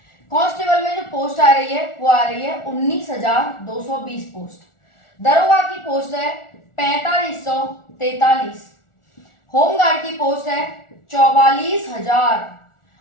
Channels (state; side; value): late; right; 1.4 ms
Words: कांस्टेबल में जो पोस्ट आ रही है वो आ रही है 19,220 पोस्ट। दरोगा की पोस्ट है 4543। होमगार्ड की पोस्ट है 44,000